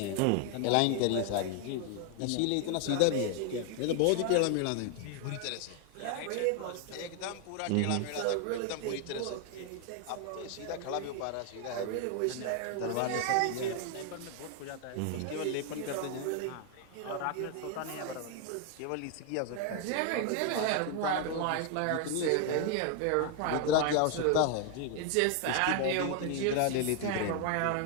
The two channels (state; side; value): different; both; correlation 0.00